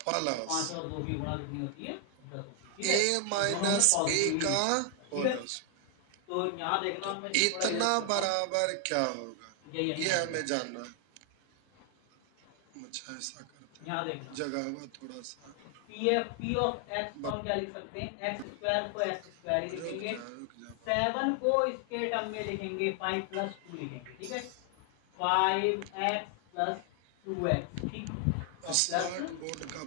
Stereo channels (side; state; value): both; different; correlation 0.00